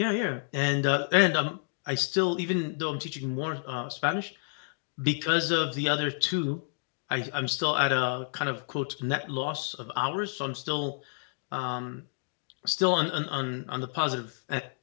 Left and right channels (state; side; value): silent; right; 58 dB below the other